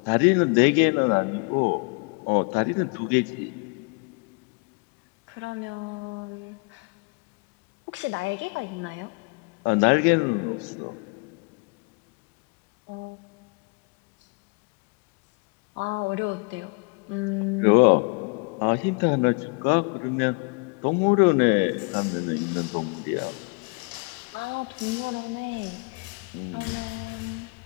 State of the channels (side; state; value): right; quieter; 32.9 dB